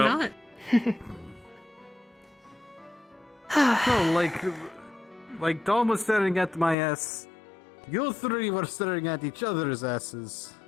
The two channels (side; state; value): right; drops out; at 6.8 s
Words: No, like Tom was staring at my ass. You three were staring at each other's asses.